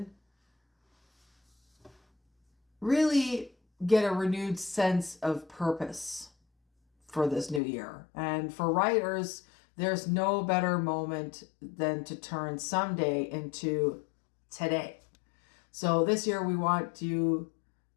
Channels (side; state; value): right; drops out; at 7.6 s